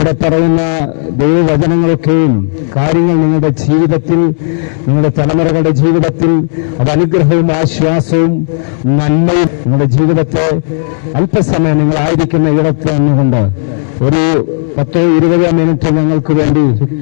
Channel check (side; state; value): right; silent; digital silence